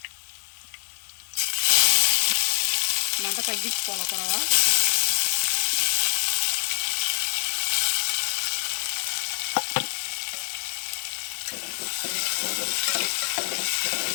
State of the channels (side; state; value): right; silent; 61 dB below the other